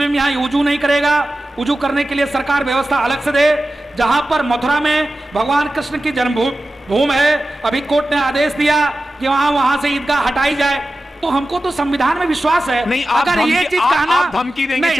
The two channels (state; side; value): normal; both; correlation 0.94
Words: यहाँ वुजू नहीं करेगा, वुजू करने के लिए सरकार व्यवस्था अलग से दे। जहां पर मथुरा में भगवान कृष्ण की जन्मभूमि है, अभी कोर्ट ने आदेश दिया कि वहां से ईदगाह हटाई जाए। तो हमको तो संविधान में विश्वास है। नहीं, अगर ये चीज कहना, आप धमकी देंगे,